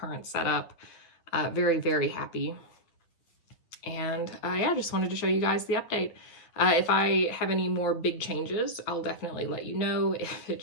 setup. Very, very happy. And yeah, I just wanted to show you guys the update. If I have any more big changes, I'll definitely let you know. If it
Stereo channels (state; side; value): late; right; 9.3 ms